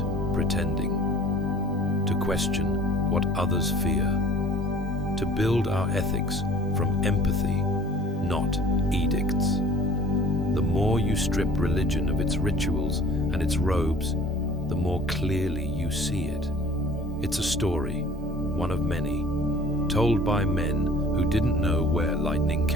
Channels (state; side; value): normal; both; correlation 0.49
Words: pretending. To question what others fear. To build our ethics from empathy, not edicts. The more you strip religion of its rituals and its robes, the more clearly you see it. It's a story, one of many, told by men who didn't know where lightning